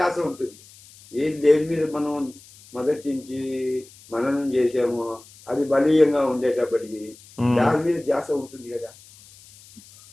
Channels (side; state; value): left; noise; hiss, 23 dB below the sound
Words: ఉంటుంది. ఏది దేని మీద మనం మొదటి నుంచి మననం చేసామో అది బలీయంగా ఉండేటప్పటికి దాని మీద ధ్యాస ఉంటుంది కదా.